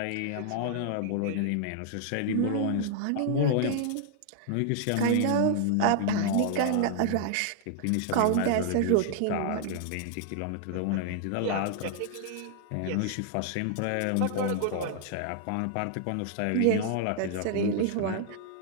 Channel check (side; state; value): both; different; correlation -0.01